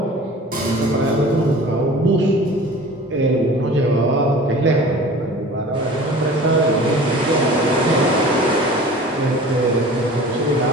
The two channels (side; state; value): both; normal; correlation 0.42